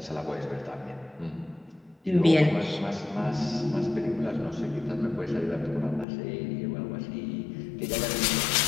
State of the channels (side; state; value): right; drops out; at 6.1 s